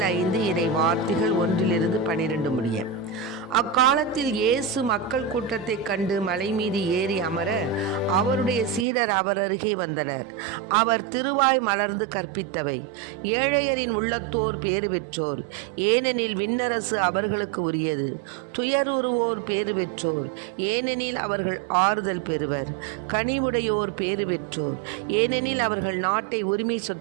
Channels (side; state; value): left; drops out; at 8.8 s